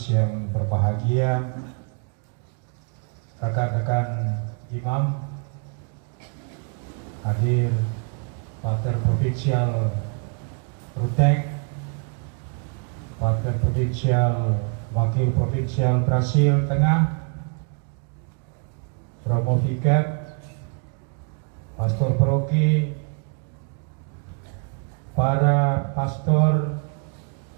yang berbahagia, rekan-rekan imam, hadir Pater Provinsial Ruteng, Pater Provinsial Wakil Provinsial Brasil Tengah, Romo Vikat, Pastor Paroki, para pastor,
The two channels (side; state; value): left; quieter; 39.2 dB